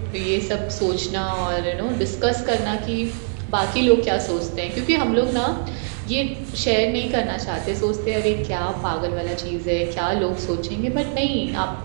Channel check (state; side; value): silent; left; digital silence